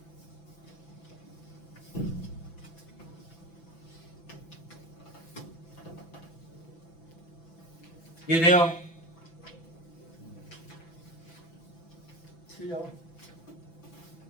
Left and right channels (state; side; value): late; right; 6.0 ms